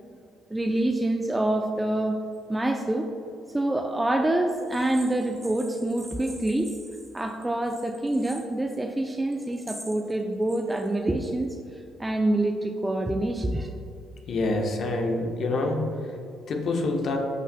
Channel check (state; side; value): normal; both; correlation 0.87